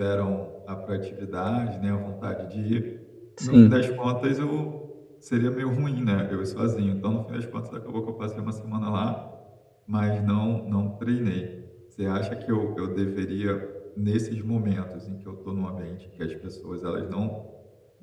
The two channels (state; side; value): identical; both; correlation 1.00